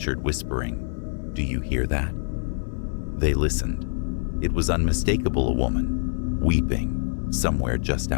whispering, "Do you hear that?" They listened. It was unmistakable, a woman, weeping, somewhere just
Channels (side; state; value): right; silent; 59 dB below the other